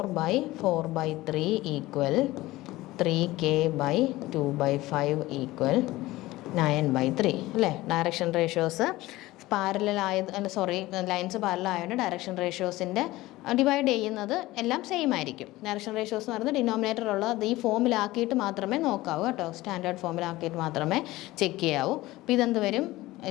= 3K/2/5 = 9/3 അല്ലേ? Direction ratios parallel lines parallel ആയതുകൊണ്ട് ഡയറക്ഷൻ റേഷ്യോസിൻ്റെ ഡിവൈഡ് ചെയ്യുന്നത് എല്ലാം സെയിം ആയിരിക്കും. ഡയറക്ഷൻ റേഷ്യോസ് എന്ന് പറയുന്നത് ഡിനോമിനേറ്ററുള്ളത് ഈ ഫോമിലാക്കിയിട്ട് മാത്രമേ നോക്കാവൂ കേട്ടോ. സ്റ്റാൻഡേർഡ് ഫോമിലാക്കിയിട്ട് മാത്രമേ ചെക്ക് ചെയ്യാവൂ. അപ്പോൾ ഇതെന്ത് വരും?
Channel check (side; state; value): right; quieter; 18.2 dB